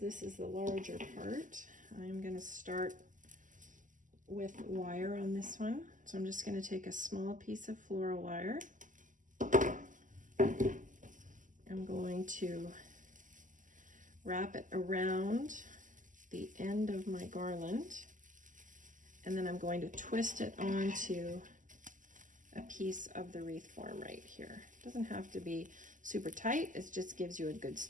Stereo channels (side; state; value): left; late; 0.37 ms